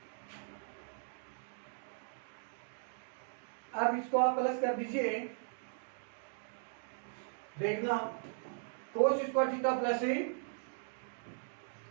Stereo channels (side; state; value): left; silent; digital silence